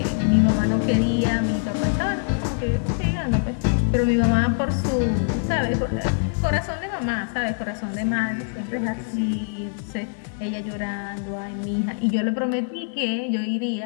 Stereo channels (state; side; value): silent; right; digital silence